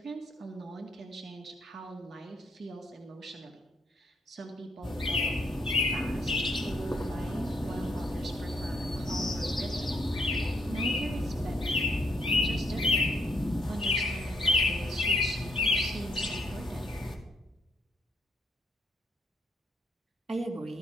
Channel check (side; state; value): both; normal; correlation 0.72